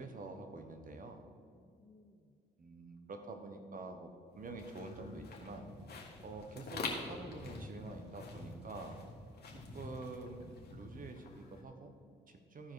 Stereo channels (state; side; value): normal; both; correlation 0.39